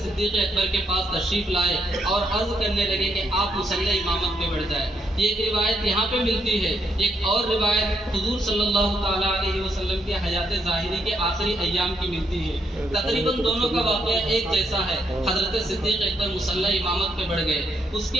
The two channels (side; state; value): both; normal; correlation 0.76